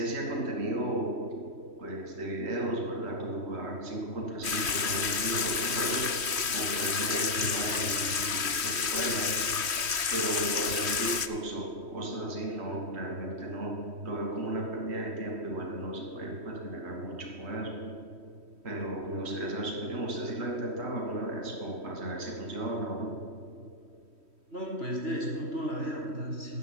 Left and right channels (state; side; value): late; left; 3.1 ms